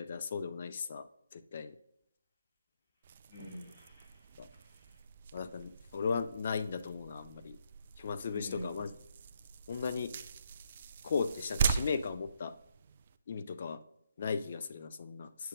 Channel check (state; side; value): inverted; both; correlation -0.76